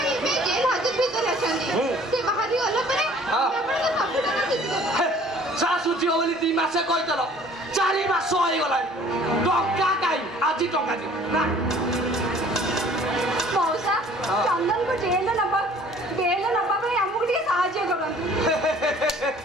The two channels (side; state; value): both; normal; correlation 0.53